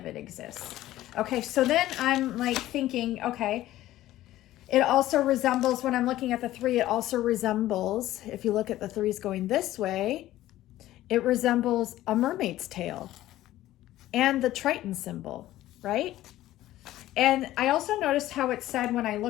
it exists. Okay, so then I'm like thinking, okay, it also resembles, when I'm looking at the 3, it also resembles, if you look at the 3s going this way, it resembles a mermaid's tail and the Triton symbol, right? And I also noticed how it said, when I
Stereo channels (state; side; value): quieter; right; 14.8 dB